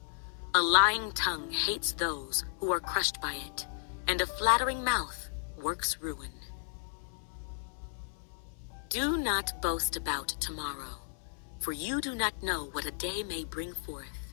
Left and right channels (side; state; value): right; silent; 55 dB below the other